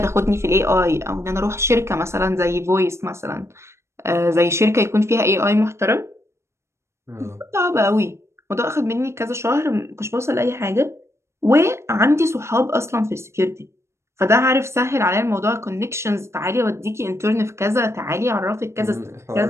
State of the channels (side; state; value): left; late; 0.13 ms